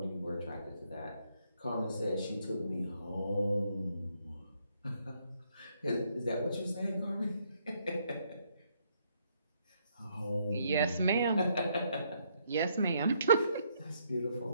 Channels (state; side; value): inverted; both; correlation -0.72